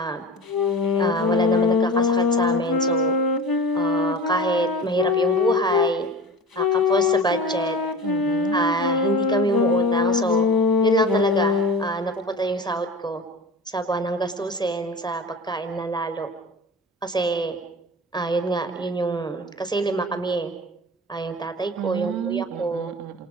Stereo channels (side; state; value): both; normal; correlation 0.34